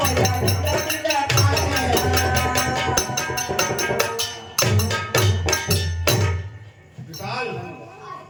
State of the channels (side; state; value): both; identical; correlation 1.00